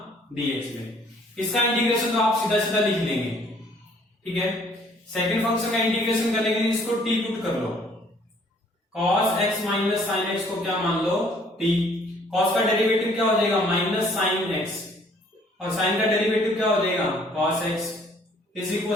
dx में। इसका इंटीग्रेशन तो आप सीधा सीधा लिख लेंगे, ठीक है। सेकंड फंक्शन का इंटीग्रेशन करने के लिए इसको t पुट कर लो, cos x minus sine x को क्या मान लो t। cos का डेरिवेटिव क्या हो जाएगा माइनस साइन एक्स और साइन का डेरिवेटिव क्या हो जाएगा cos x is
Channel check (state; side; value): normal; both; correlation 0.59